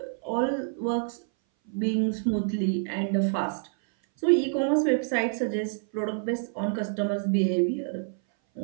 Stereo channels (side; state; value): left; silent; 58 dB below the other